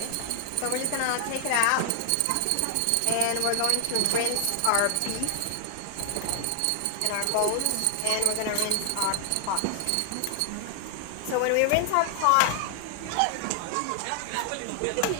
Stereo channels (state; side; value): different; both; correlation 0.00